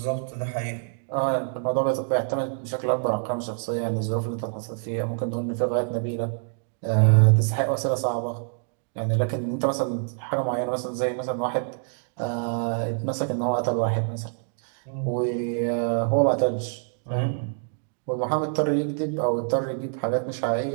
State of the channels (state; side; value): silent; left; digital silence